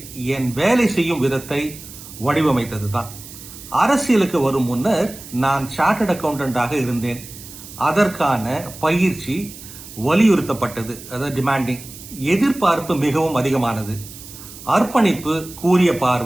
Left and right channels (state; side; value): noise; right; hiss, 16 dB below the sound